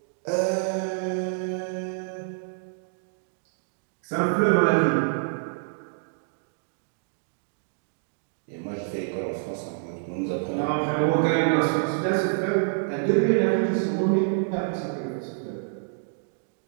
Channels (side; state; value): left; silent; digital silence